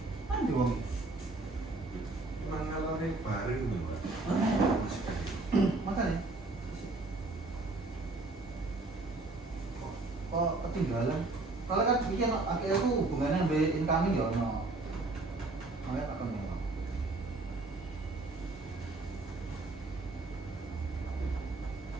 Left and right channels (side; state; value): left; quieter; 3.2 dB